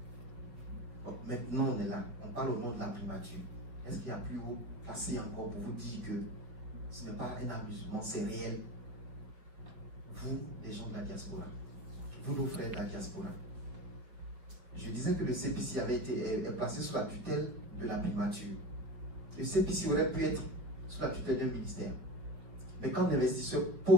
Donc maintenant on est là, on parle au nom de la primature. Est-ce qu'il y a plus haut passé encore pour vous dire que ce n'est pas un amusement, c'est réel? Vous, les gens de la diaspora, vous, nos frères de la diaspora. Je disais que le CPC avait été placé sous la tutelle de la primature. Le CPC aurait pu être sous la tutelle d'un ministère. Mais quand l'investisseur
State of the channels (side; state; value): left; late; 5.3 ms